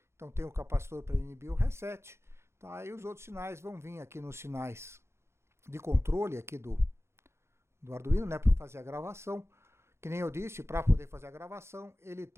Então, tem o capacitor para inibir o reset, tá? E os outros sinais vão vir aqui nos sinais de controle aqui do Arduino, né, para fazer a gravação. Que nem eu disse, para poder fazer a gravação, ele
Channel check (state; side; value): late; left; 0.13 ms